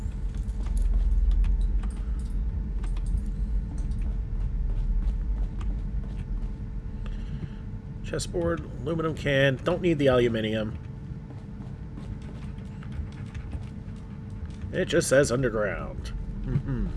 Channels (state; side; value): identical; both; correlation 1.00